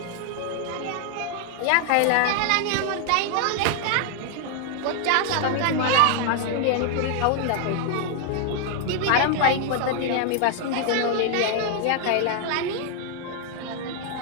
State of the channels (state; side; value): different; both; correlation 0.00